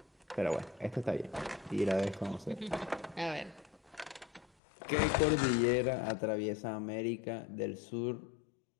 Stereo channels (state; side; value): drops out; right; at 4.5 s